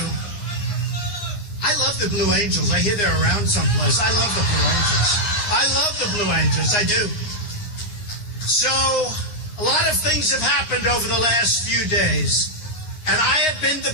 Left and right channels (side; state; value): right; late; 9.6 ms